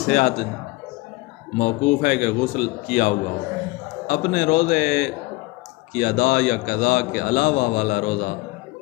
موقوف ہے کہ غسل کیا ہوا ہو۔ اپنے روزے کی ادا یا قضا کے علاوہ والا روزہ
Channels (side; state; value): right; quieter; 22.0 dB